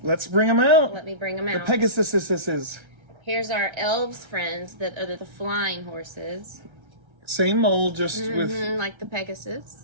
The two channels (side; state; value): left; late; 1.3 ms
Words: Let's bring them out. let me bring them The out. Pegasuses. Here's our elves friends that are the flying horses. Same mold, just Mhm, like the